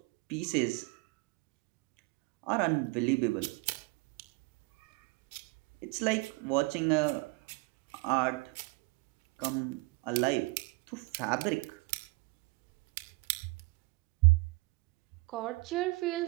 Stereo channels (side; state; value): left; quieter; 26.2 dB